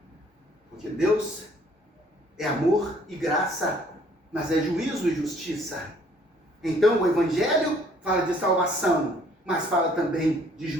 Porque Deus é amor e graça, mas é juízo e justiça. Então o Evangelho fala de salvação, mas fala também de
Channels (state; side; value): normal; both; correlation 0.60